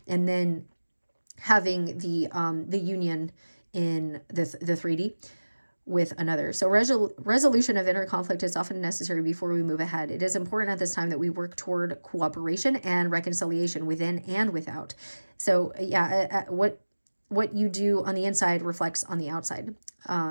and then having the union in the 3D with another. So resolution of inner conflict is often necessary before we move ahead. It is important at this time that we work toward cooperation and reconciliation within and without. So yeah, what you do on the inside reflects on the outside.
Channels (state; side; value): inverted; both; correlation -1.00